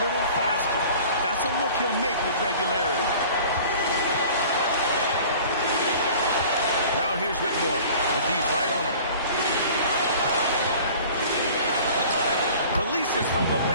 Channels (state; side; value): inverted; both; correlation -0.45